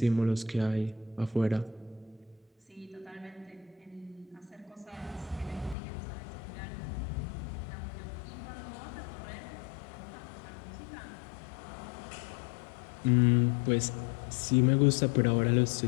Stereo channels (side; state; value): right; drops out; at 5.8 s